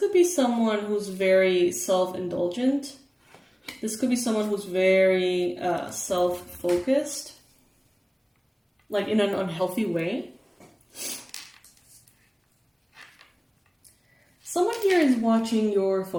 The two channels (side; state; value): both; identical; correlation 1.00